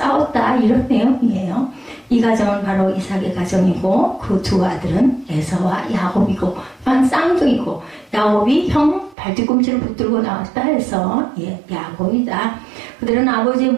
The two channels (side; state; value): left; drops out; at 9.2 s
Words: 이런 내용이에요. 이 가정은 바로 이삭의 가정이고 그 두 아들은 에서와 야곱이고 쌍둥이고 야곱이 형 발뒤꿈치를 붙들고 나왔다 해서 야곱이다. 그들은 아버지의